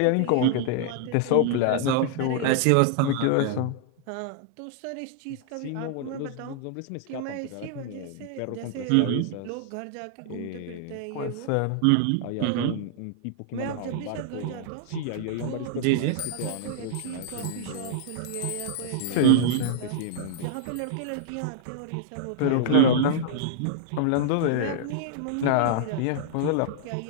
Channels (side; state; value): both; different; correlation -0.01